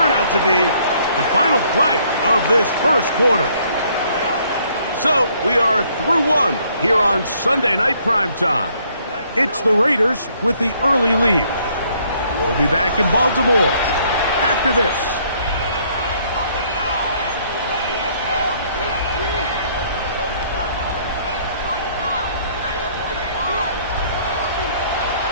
out to be the final play of this first quarter. So we are through 1 here on Sunday Night Primetime. It's the Raiders with the early lead. We'll be back in Baltimore after this.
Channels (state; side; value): inverted; both; correlation -0.65